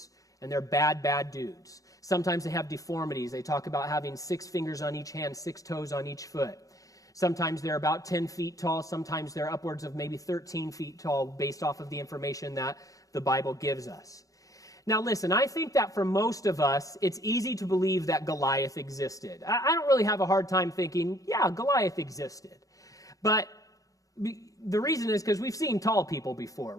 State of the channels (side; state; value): right; late; 0.17 ms